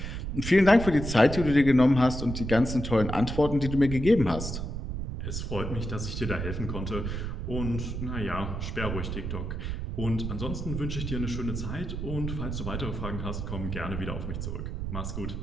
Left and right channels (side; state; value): right; noise; rumble, 4 dB below the sound